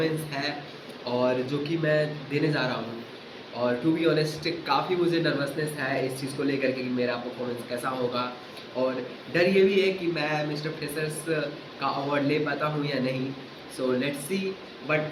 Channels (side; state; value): both; identical; correlation 1.00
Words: है और जो कि मैं देने जा रहा हूँ। और टू बी ऑनेस्ट काफ़ी मुझे नर्वसनेस है इस चीज़ को लेकर के कि मेरा परफॉर्मेंस कैसा होगा। और डर ये भी है कि मैं मिस्टर फ्रेशर्स का अवार्ड ले पाता हूँ या नहीं। So let's see.